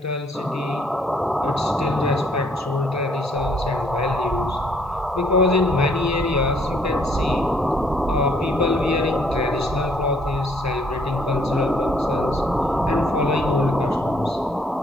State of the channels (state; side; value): normal; both; correlation 0.66